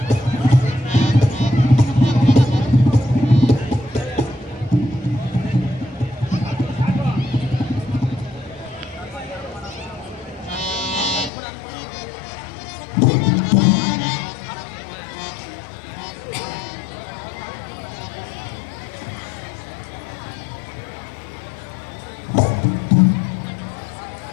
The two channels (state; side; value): drops out; right; at 11.3 s